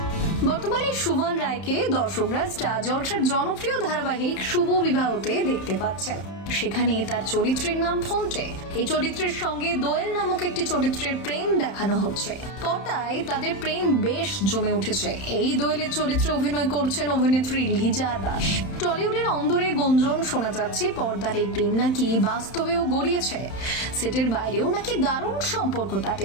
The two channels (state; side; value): late; right; 31 ms